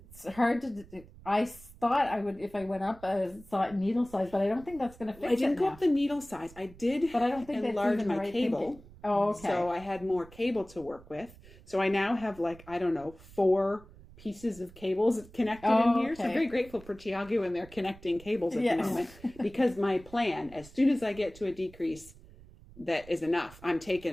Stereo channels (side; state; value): right; noise; rumble, 21 dB below the sound